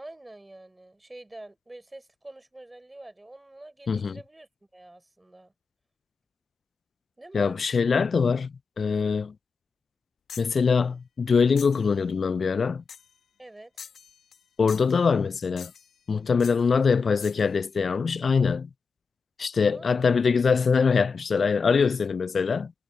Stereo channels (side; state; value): right; quieter; 5.1 dB